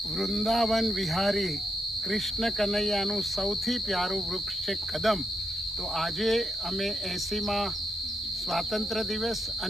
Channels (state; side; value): normal; both; correlation 0.81